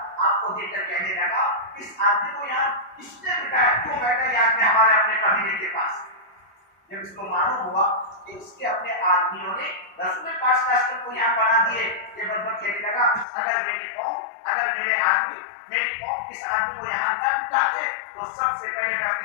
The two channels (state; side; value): drops out; right; at 13.2 s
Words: آپ کو دیکھ کر کہنے لگا اس آدمی کو یہاں کس نے بٹھایا, کیوں بیٹھا یہاں پہ ہمارے اپنے قبیلے کے پاس. جب اس کو معلوم ہوا کہ اس کے اپنے آدمیوں نے رسول پاک صلی اللہ علیہ وسلم کو یہاں بنا دیے, یہ بدبخت کہنے لگا اگر میری قوم, اگر میرے آدمی, میری قوم اس آدمی کو یہاں نہ بٹھاتے تو سب سے پہلے میں